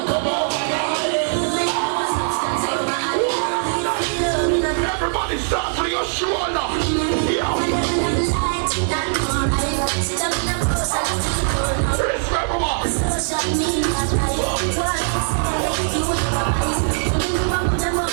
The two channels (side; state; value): left; silent; 65 dB below the other